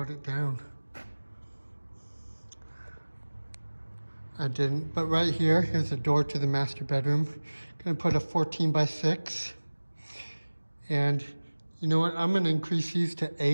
it down. I didn't, but right here, here's a door to the master bedroom. Gonna put a 14 by 6. And you know what, I'm gonna increase these to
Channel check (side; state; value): both; inverted; correlation -1.00